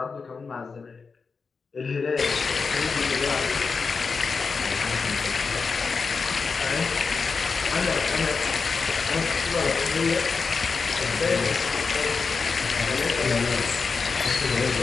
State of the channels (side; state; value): right; quieter; 4.9 dB